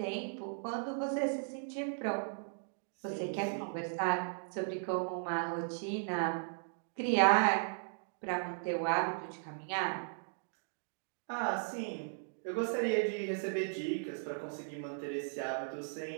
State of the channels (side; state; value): left; silent; digital silence